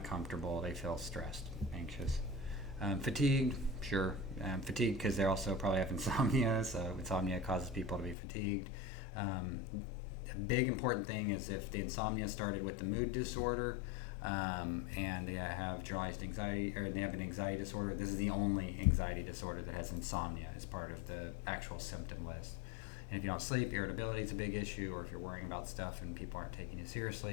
comfortable. They feel stressed, anxious. Fatigued, sure. Fatigued because they also probably have insomnia, so insomnia causes people to be fatigued. A big important thing is if the insomnia started with the mood disorder, and they have generalized anxiety, or they have an anxiety disorder, this is the only anxiety disorder that has insomnia as part of the actual symptom list. And if you don't sleep, irritability is a big issue, or if you're worrying about stuff and people aren't taking you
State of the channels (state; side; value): drops out; right; at 8.2 s